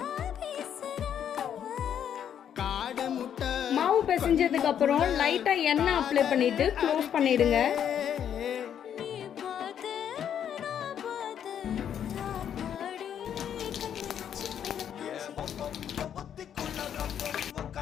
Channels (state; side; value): quieter; right; 9.1 dB